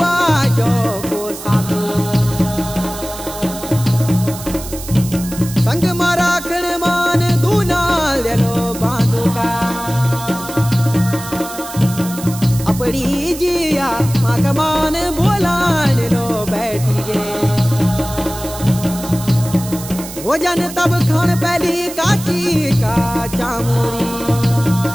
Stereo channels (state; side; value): noise; right; hiss, 12 dB below the sound